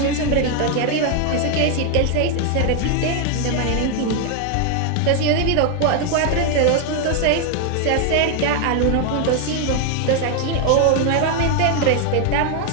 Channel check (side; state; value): both; different; correlation 0.00